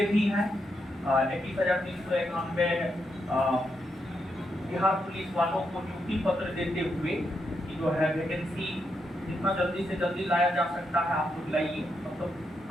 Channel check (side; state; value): both; normal; correlation 0.82